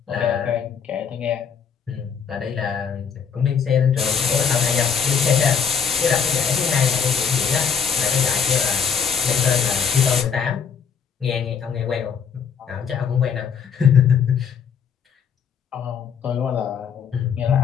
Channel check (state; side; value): quieter; right; 6.9 dB